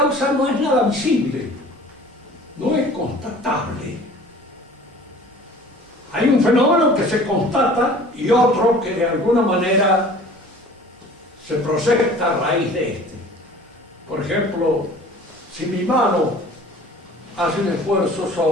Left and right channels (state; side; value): normal; both; correlation 0.46